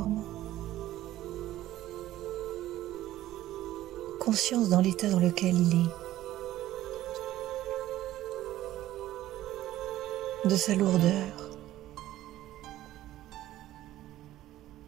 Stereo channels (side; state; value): left; quieter; 14.5 dB